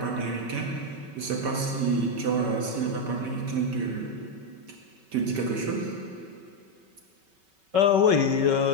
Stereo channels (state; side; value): late; left; 5.3 ms